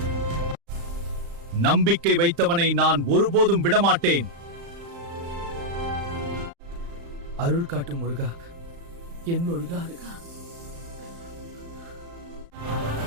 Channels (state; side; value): late; left; 35 ms